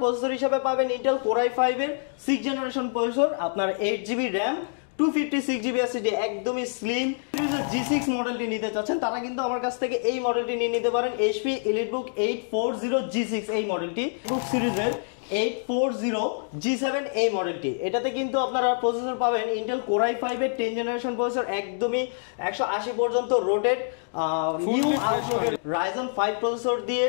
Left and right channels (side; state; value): right; silent; digital silence